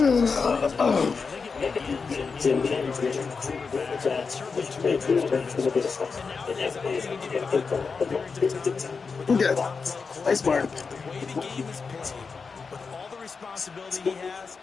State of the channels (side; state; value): right; quieter; 5.0 dB